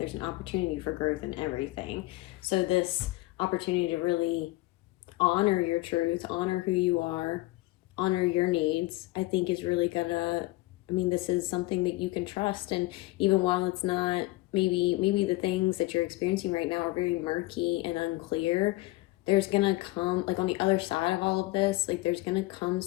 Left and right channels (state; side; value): quieter; right; 20.0 dB